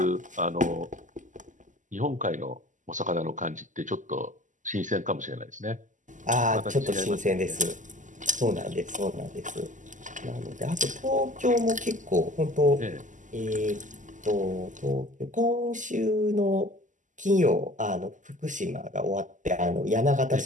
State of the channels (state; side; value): late; left; 0.37 ms